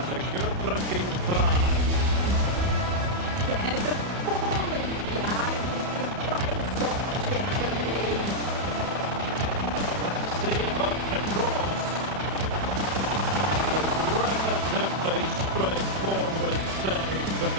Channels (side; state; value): left; late; 31 ms